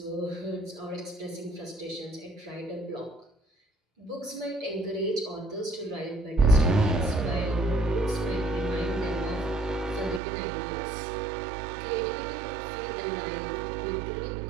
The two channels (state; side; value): drops out; left; at 10.2 s